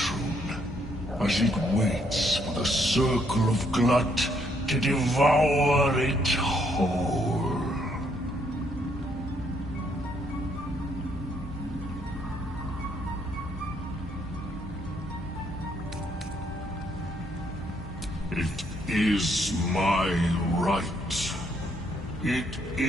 as it waits for the circle of Glut to devour it whole. It is my right. It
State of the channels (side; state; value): both; normal; correlation 0.71